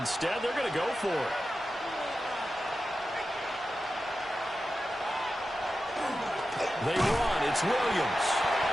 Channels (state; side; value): normal; both; correlation 0.92